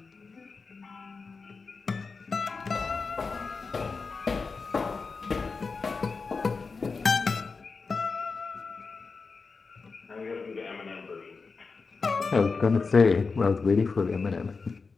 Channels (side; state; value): right; quieter; 4.5 dB